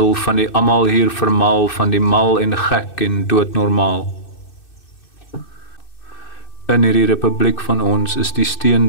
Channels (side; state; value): right; late; 2.6 ms